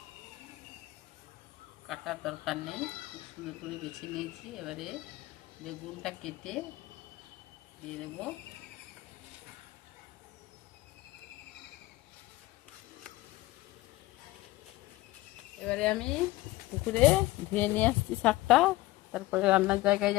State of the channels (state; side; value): quieter; right; 18.5 dB